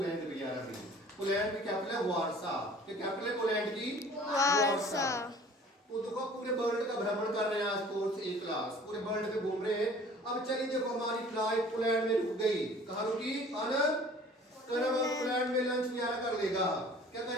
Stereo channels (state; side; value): normal; both; correlation 0.48